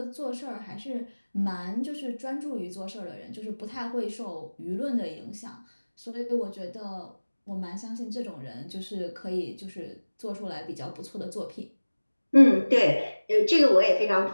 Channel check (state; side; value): inverted; both; correlation -1.00